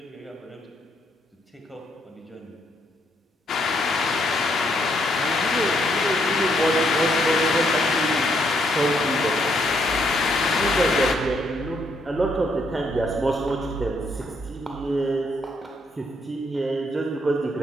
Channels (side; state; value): both; normal; correlation 0.73